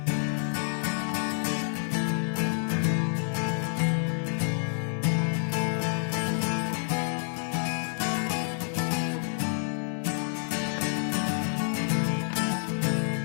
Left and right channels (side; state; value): right; silent; digital silence